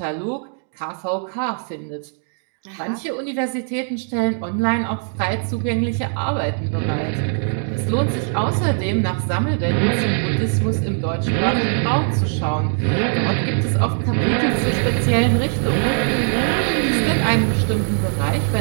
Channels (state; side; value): silent; left; 57 dB below the other